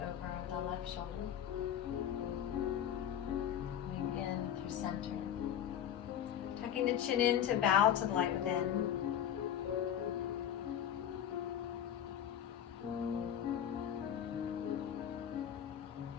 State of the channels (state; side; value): quieter; right; 9.9 dB